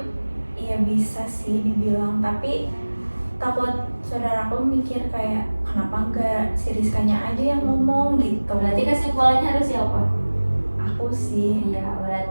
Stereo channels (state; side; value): inverted; both; correlation -1.00